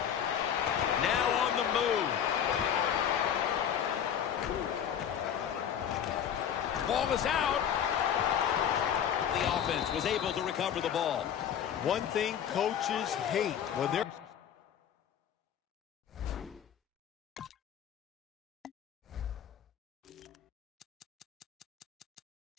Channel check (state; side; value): quieter; right; 9.0 dB